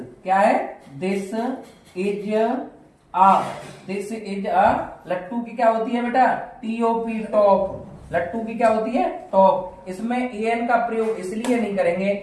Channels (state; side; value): identical; both; correlation 1.00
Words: क्या है, this is a, this is a. लट्टू की क्या होती है बेटा, TOP, टॉप। लट्टू की क्या होती है, टॉप। इसमें एन का प्रयोग इसलिए नहीं करेंगे